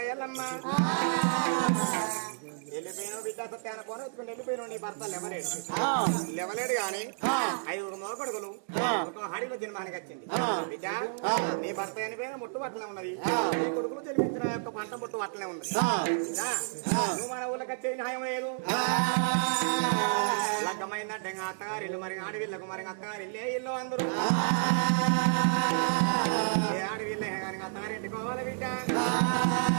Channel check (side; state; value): left; silent; digital silence